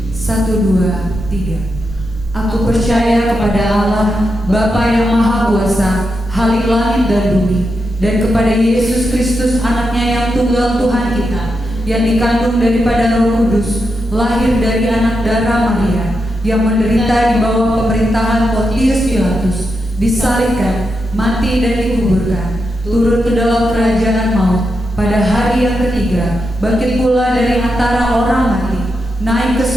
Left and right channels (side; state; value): both; normal; correlation 0.86